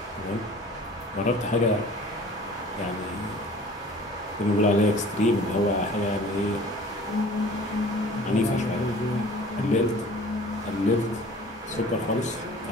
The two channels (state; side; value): normal; both; correlation 0.47